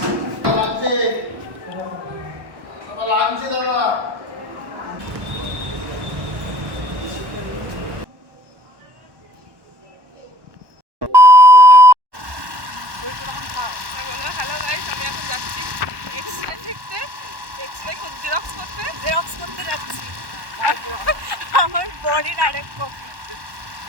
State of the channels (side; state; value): left; late; 1.1 ms